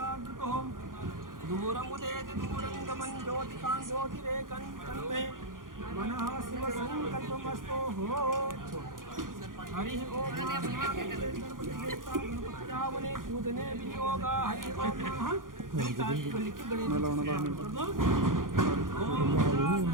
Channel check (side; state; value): left; late; 0.90 ms